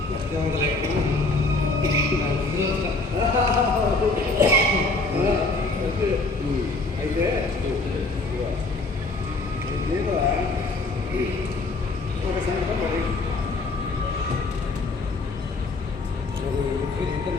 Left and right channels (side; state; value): right; quieter; 3.3 dB